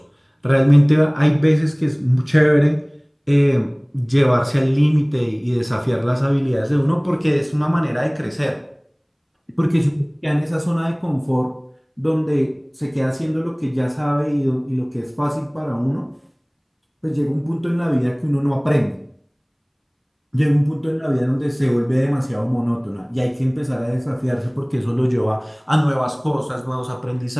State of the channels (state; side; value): identical; both; correlation 1.00